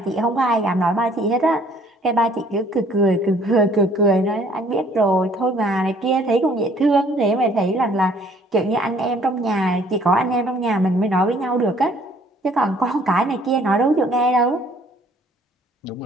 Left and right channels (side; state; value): both; normal; correlation 0.59